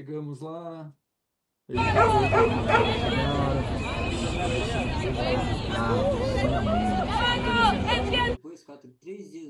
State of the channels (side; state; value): both; identical; correlation 1.00